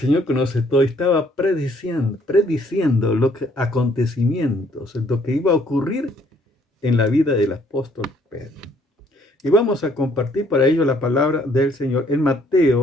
conoce todo y estaba prediciendo acontecimientos, lo que iba a ocurrir en la vida del apóstol Pedro. Y vamos a compartir para ello la palabra del Señor en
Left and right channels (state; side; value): normal; both; correlation 0.64